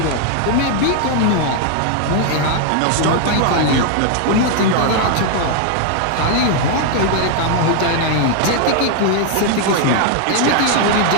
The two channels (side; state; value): both; different; correlation 0.00